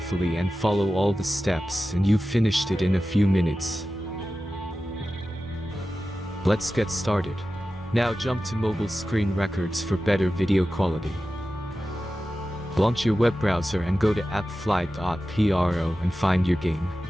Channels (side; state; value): both; normal; correlation 0.94